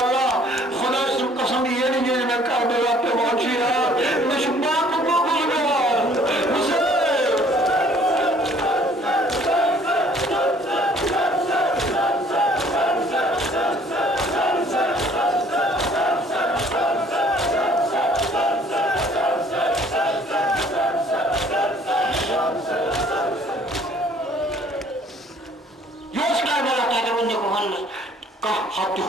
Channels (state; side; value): normal; both; correlation 0.57